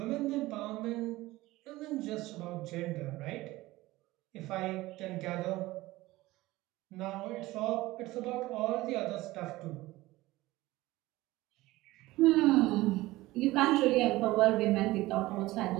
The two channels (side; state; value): left; quieter; 18.5 dB